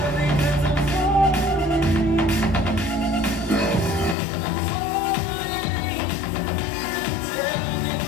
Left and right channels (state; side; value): drops out; right; at 4.2 s